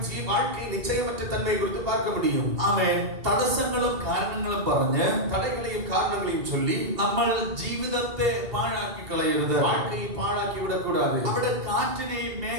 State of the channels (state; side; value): late; left; 2.8 ms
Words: வாழ்க்கை நிச்சயமற்ற தன்மையை குறித்து பார்க்க முடியும். അവൻ തടസ്സങ്ങളും കാരണങ്ങളും പറഞ്ഞ് தடைகளையும் காரணங்களையும் சொல்லி നമ്മൾ ജീവിതത്തെ പാഴാക്കി കളയരുത്. வாழ்க்கையை பாழாக்கி விடக்கூடாது. അവിടെ കാറ്റിനെയും